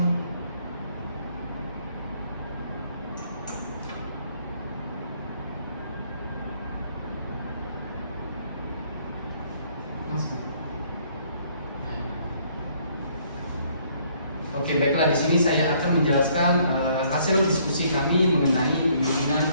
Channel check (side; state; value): both; inverted; correlation -0.64